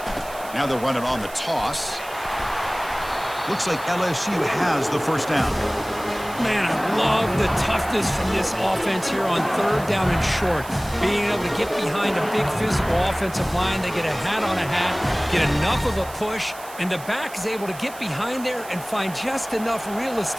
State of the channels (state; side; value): noise; right; hiss, 17 dB below the sound